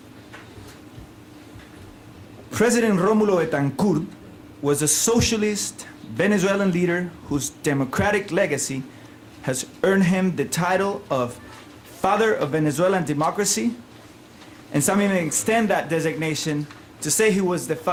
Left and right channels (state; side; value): identical; both; correlation 1.00